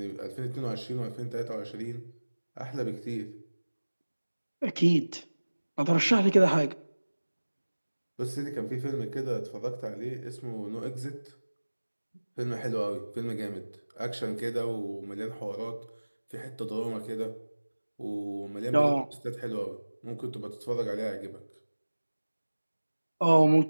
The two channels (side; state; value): both; inverted; correlation -1.00